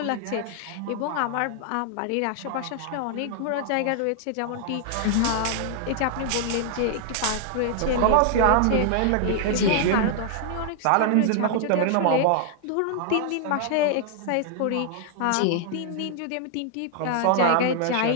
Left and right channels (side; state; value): both; different; correlation 0.00